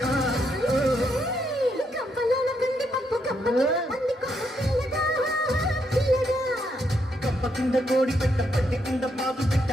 కప్ప కింద కోడి పెట్ట పట్టి కింద పాదు పెట్ట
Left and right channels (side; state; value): both; normal; correlation 0.77